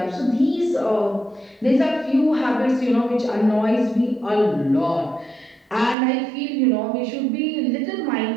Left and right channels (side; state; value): left; drops out; at 6.0 s